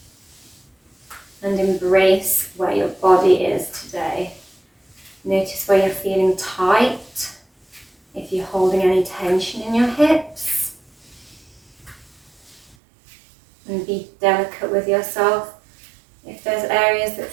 and embrace where your body is today. Notice where you're feeling tight, if you're holding any tension in your hips. And be delicate with yourself. If there's areas that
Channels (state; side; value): drops out; left; at 12.8 s